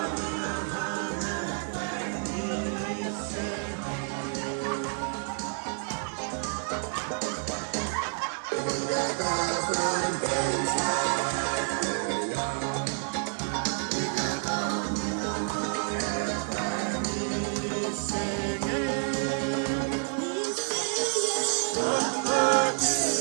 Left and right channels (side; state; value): left; silent; 58 dB below the other